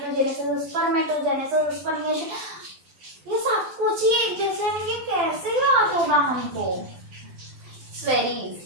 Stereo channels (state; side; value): late; left; 12 ms